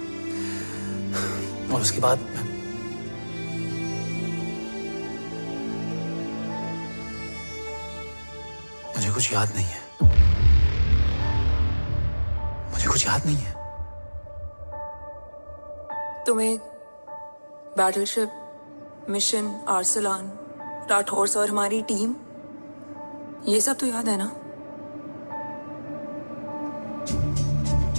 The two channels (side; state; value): both; inverted; correlation -1.00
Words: और उसके बाद मुझे कुछ याद नहीं है। मुझे कुछ याद नहीं है। तुम्हें बैटलशिप, मिशन, आर्सलान, राठौर और हमारी टीम, ये सब तो याद है ना?